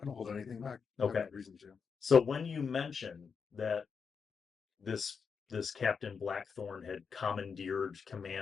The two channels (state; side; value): quieter; right; 5.9 dB